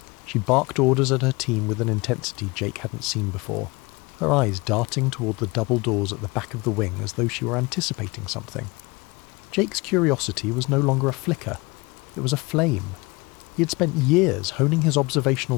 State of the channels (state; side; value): quieter; right; 25.2 dB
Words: She barked orders at her team with an intensity Jake hadn't seen before, her eyes darting toward the double doors at the back of the wing as though she were anticipating something. Jake's curiosity was no longer a flicker. It was a flame. He had spent years honing his